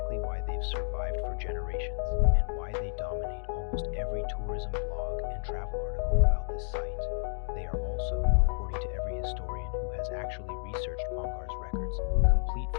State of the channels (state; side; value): silent; right; 57 dB below the other